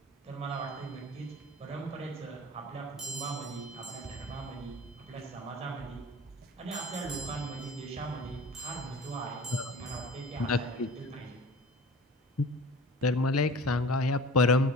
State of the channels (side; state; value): both; normal; correlation 0.40